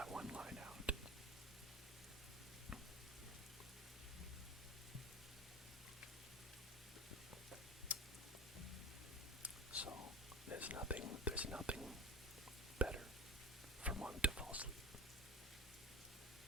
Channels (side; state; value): both; normal; correlation 0.32